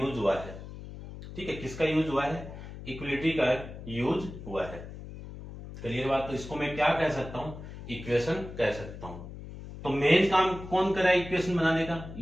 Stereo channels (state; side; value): noise; left; hum, 12 dB below the sound